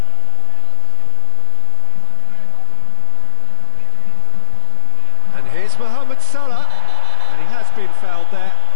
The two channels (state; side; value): different; both; correlation 0.00